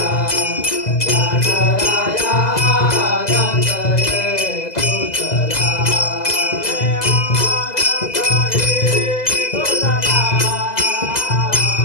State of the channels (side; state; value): right; late; 2.0 ms